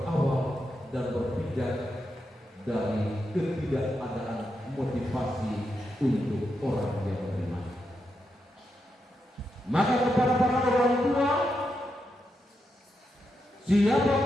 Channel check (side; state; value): both; normal; correlation 0.84